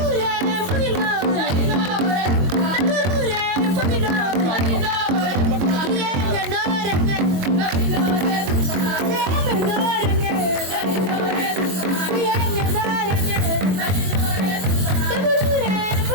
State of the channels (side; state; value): left; late; 22 ms